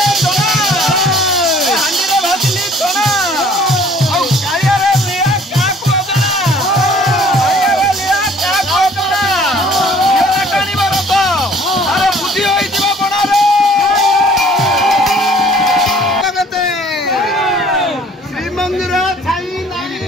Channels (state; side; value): normal; both; correlation 0.55